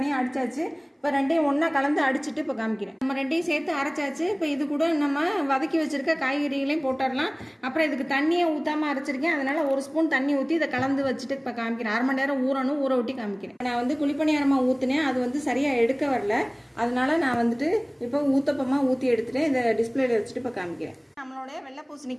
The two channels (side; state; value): both; identical; correlation 1.00